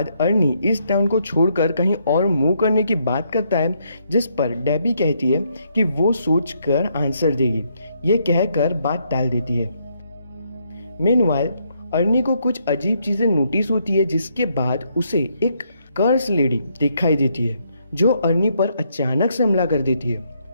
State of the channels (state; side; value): inverted; both; correlation -0.74